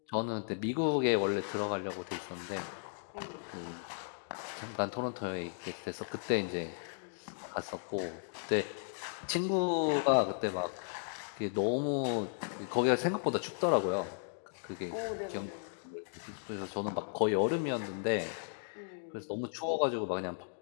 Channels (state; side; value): silent; right; digital silence